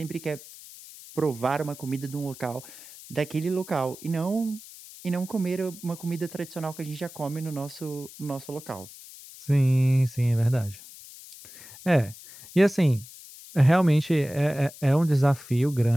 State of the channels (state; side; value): noise; left; hiss, 17 dB below the sound